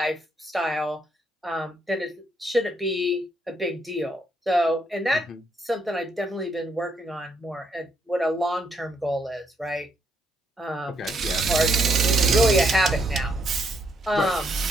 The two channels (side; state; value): both; normal; correlation 0.74